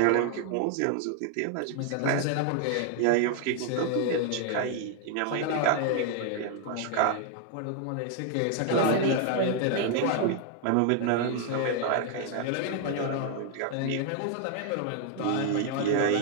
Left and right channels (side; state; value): both; different; correlation 0.00